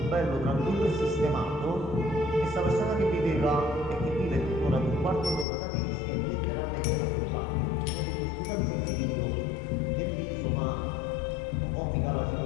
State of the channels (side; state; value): right; drops out; at 5.5 s